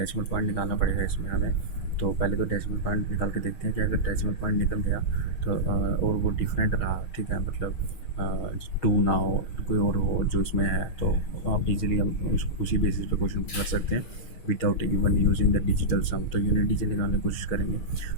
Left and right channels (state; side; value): late; right; 6.4 ms